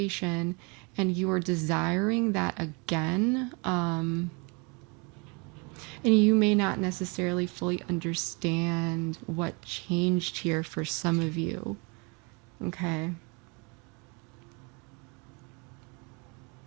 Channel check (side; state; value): left; quieter; 31.5 dB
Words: and you are desiring that again. And you may not necessarily fully understand what changed here for some of you. Okay.